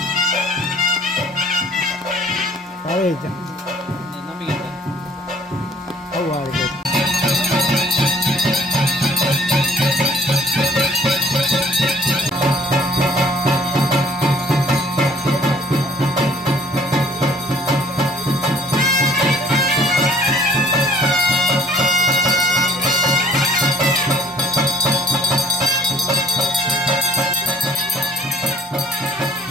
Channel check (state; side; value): normal; both; correlation 0.55